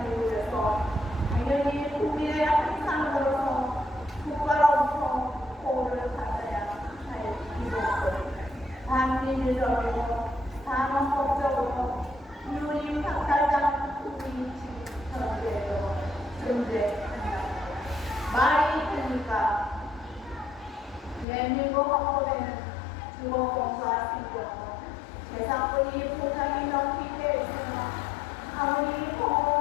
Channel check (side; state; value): right; drops out; at 21.2 s